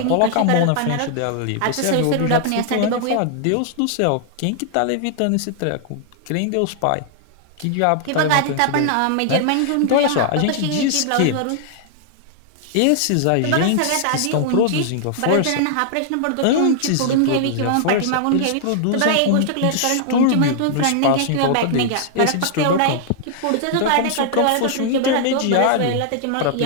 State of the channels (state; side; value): different; both; correlation -0.01